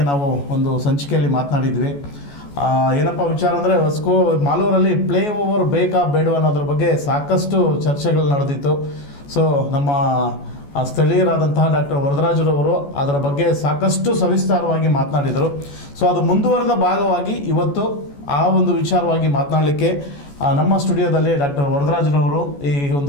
ನಾವು ಒಂದು ಸಂಚಿಕೆಯಲ್ಲಿ ಮಾತನಾಡಿದ್ವಿ. ಏನಪ್ಪ ವಿಚಾರ ಅಂದರೆ ಮಾಲೂರಲ್ಲಿ ಫ್ಲೈ ಓವರ್ ಬೇಕಾ ಬೇಡವಾ ಅನ್ನೋದ್ರ ಬಗ್ಗೆ ಸಾಕಷ್ಟು ಚರ್ಚೆಗಳು ನಡೆದಿತ್ತು. ಸೊ ನಮ್ಮ ಸ್ಥಳೀಯರಾದಂತಹ ಡಾಕ್ಟರ್ ವರದರಾಜರವರು ಅದರ ಬಗ್ಗೆ ಸಾಕಷ್ಟು ಸವಿಸ್ತಾರವಾಗಿ ಮಾತನಾಡಿದರು. ಸೊ ಅದು ಮುಂದುವರೆದ ಭಾಗವಾಗಿ ಇವತ್ತು ಆ ಒಂದು ವಿಚಾರವಾಗಿ ಮಾತನಾಡಲಿಕ್ಕೆ ನಮ್ಮ ಸ್ಟುಡಿಯೋದಲ್ಲಿ ಡಾಕ್ಟರ್ ವರದರಾಜರವರು ಈ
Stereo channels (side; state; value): right; late; 14 ms